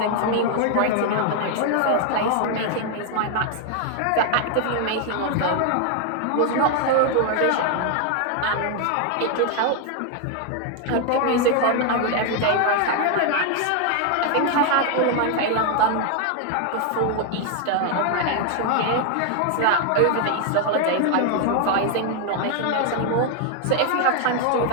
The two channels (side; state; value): both; different; correlation 0.00